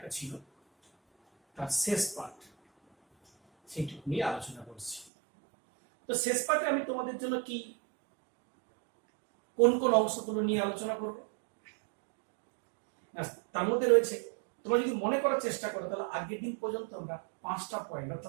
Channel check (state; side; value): drops out; left; at 5.1 s